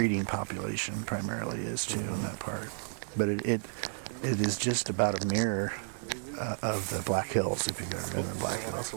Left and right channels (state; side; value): silent; left; digital silence